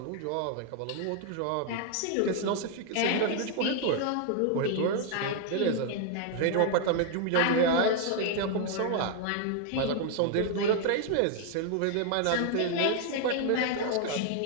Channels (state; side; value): different; both; correlation 0.00